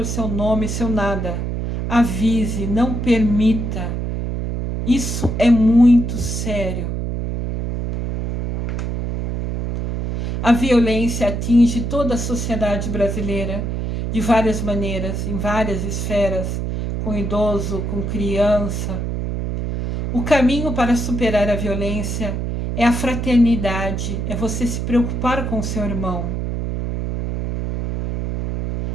seu nome, seu nada. Avise, não permita. Isso é muito sério. A violência atinge toda a sociedade brasileira de várias maneiras, em várias esferas, com idoso, com criança. O caminho para superar a violência é a fraternidade, é você se preocupar com o seu irmão.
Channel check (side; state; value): right; noise; hum, 3 dB below the sound